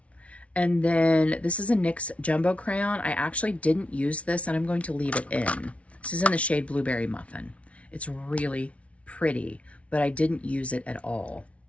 And then this is a NYX Jumbo Crayon. I actually didn't use this, and I'm going to leave it in. This is in the shade Blueberry Muffin. It's really pretty, but I didn't use it at all.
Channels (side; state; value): right; late; 0.063 ms